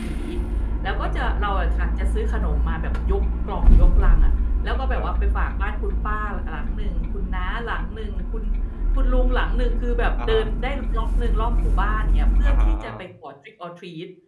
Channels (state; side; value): identical; both; correlation 1.00